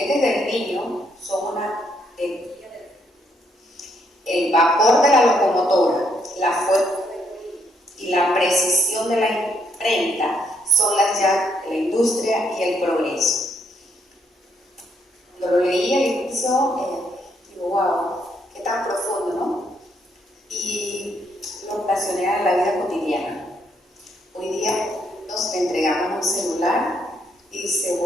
del niño son una energía el vapor de la locomotora, la fuerza y la precisión de la imprenta son las llaves de la industria y el progreso. Cuando lo leí al inicio, digo, wow, qué tan profundo, ¿no? Y lo relacioné a la vida cotidiana. Hoy día nos entregamos un celular y se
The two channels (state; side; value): normal; both; correlation 0.73